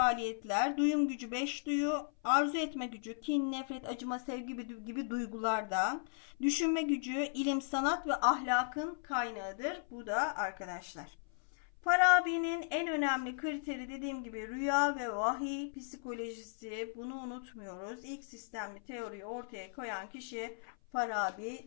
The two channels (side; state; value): right; silent; 54 dB below the other